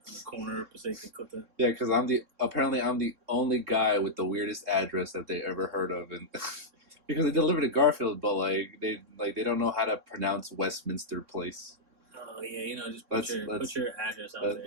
the corner of Passaic and Clifton. Yeah, because I'm the only guy with the weirdest address that they ever heard of, and because they delivered to Garfield, but they don't know how to pronounce Westminster Place. Oh yeah, just put your address out there.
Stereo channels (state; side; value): late; left; 3.6 ms